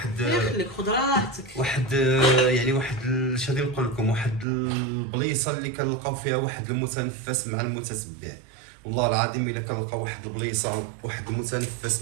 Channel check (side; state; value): left; drops out; at 4.5 s